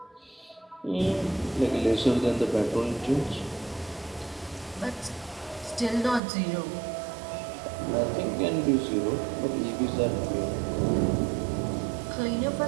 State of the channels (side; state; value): left; drops out; at 6.2 s